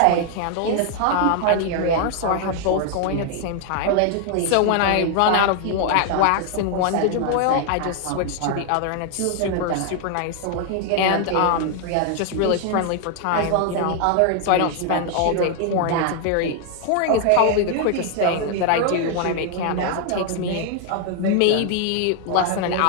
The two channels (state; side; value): different; both; correlation 0.00